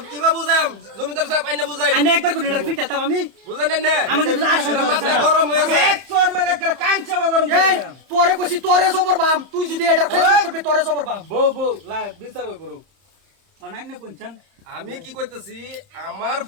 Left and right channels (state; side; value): late; left; 30 ms